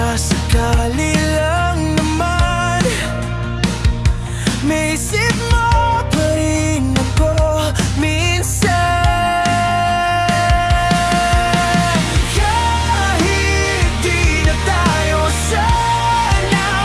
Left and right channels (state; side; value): identical; both; correlation 1.00